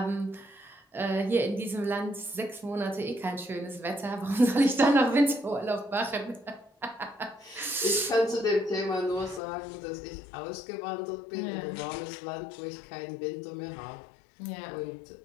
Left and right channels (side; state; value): right; drops out; at 9.4 s